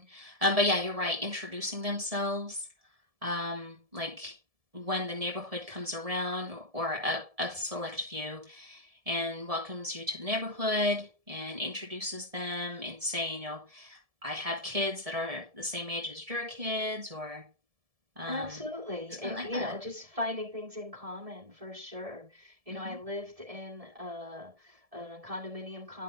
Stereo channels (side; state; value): left; late; 1.7 ms